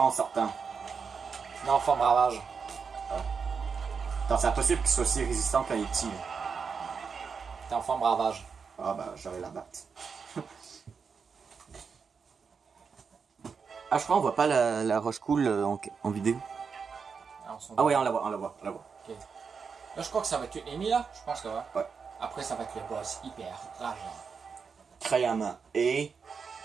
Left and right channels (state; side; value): quieter; left; 5.7 dB